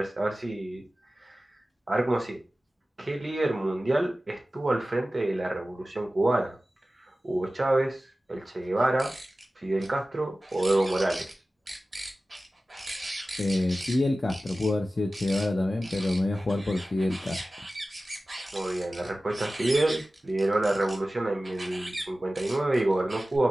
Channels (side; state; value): both; normal; correlation 0.96